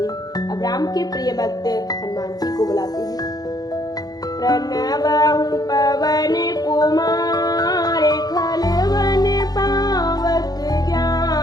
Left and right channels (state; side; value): late; right; 0.19 ms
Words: अब राम के प्रिय भक्त हनुमान जी को बुलाते हैं। प्रणवहु पवन कुमार खलवन पावक